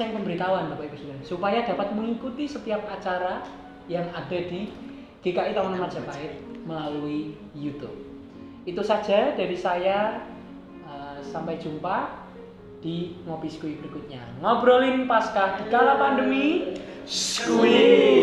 pemberitahuan Bapak Ibu Saudara supaya dapat mengikuti setiap acara yang ada di GKI Taman Majapahit melalui YouTube. Itu saja dari saya. Sampai jumpa di Ngopi Skuy berikutnya. Ngobrolin Paskah di kala pandemi Skuy.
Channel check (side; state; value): both; identical; correlation 1.00